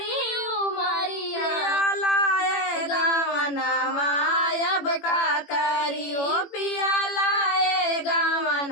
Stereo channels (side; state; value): right; late; 18 ms